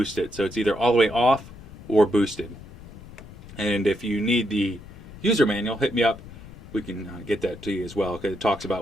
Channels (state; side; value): noise; left; rumble, 17 dB below the sound